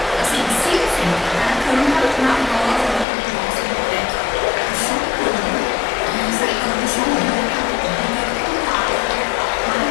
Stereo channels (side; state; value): right; drops out; at 3.1 s